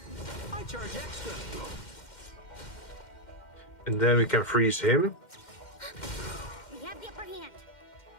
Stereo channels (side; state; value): right; late; 2.1 ms